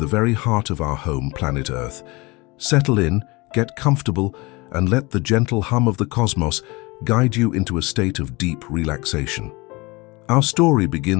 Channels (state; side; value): quieter; right; 24.7 dB